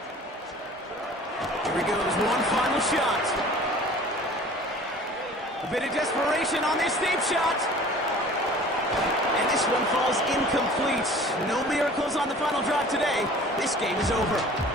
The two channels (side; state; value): both; normal; correlation 0.46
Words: Here he goes, one final shot. A bit of desperation on this deep shot. And this one falls incomplete. No miracles on the final drive today. This game is over.